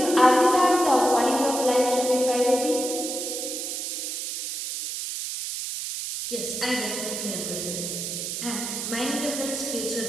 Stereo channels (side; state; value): right; noise; hiss, 4 dB below the sound